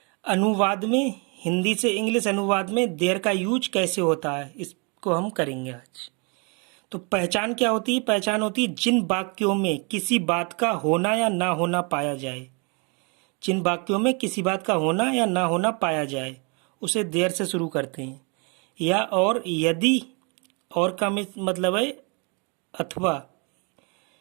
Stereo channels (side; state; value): left; quieter; 33.7 dB